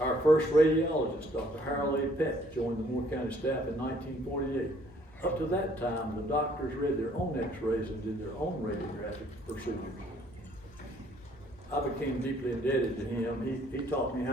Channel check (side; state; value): both; normal; correlation 0.62